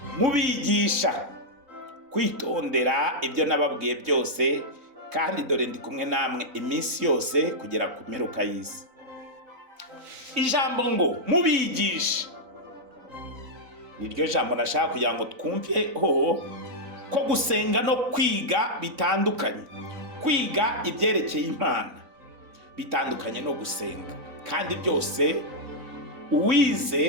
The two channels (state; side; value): late; left; 3.9 ms